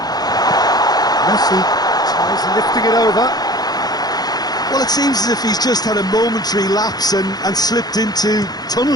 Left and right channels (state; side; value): late; right; 0.19 ms